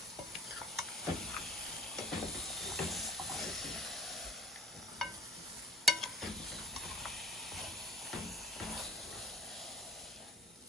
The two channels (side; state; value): both; normal; correlation 0.48